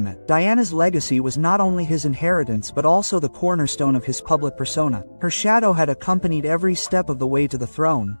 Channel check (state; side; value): inverted; both; correlation -1.00